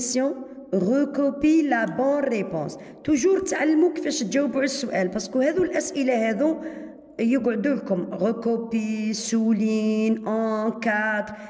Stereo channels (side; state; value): both; identical; correlation 1.00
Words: recopie la bonne réponse. Toujours تعلموا كيفاش تجاوبوا على السؤال باسكو هذو الأسئلة هذو يقعدوا لكم ريكوبي سولين ان كادر